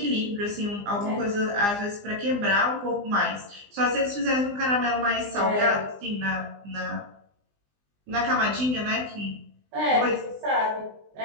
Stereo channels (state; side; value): late; left; 20 ms